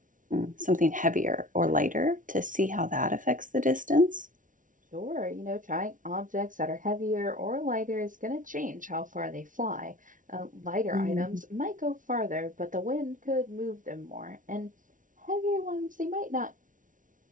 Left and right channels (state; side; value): late; left; 0.38 ms